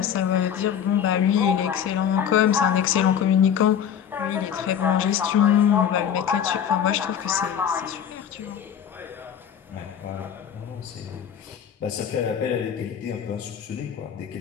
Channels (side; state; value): right; quieter; 8.7 dB